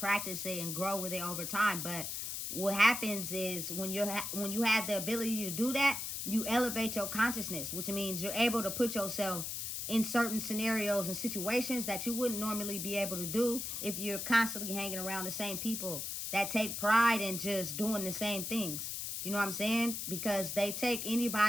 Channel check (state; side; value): noise; left; hiss, 4 dB below the sound